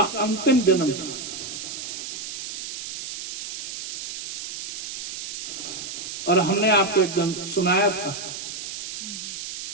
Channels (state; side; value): noise; right; hiss, 6 dB below the sound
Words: अंतिम जन्म था। और हमने आपको एकदम सुनाया था।